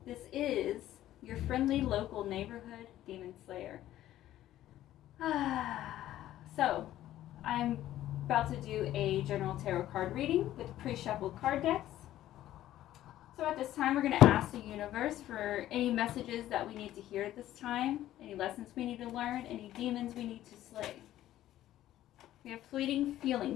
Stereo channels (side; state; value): right; quieter; 13.5 dB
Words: This is your friendly local neighborhood demon slayer. So, I'm about to do a general tarot card reading with pre-shuffled card decks. So at this time, we're going to ask the universe for any messages that we need to hear at this time, any lessons we need to learn, any demons we need to slay. We have fleeting